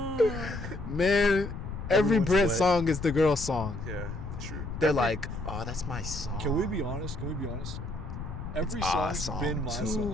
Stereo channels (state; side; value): noise; left; rumble, 8 dB below the sound